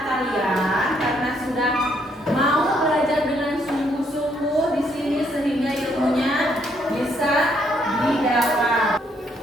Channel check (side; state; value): both; normal; correlation 0.71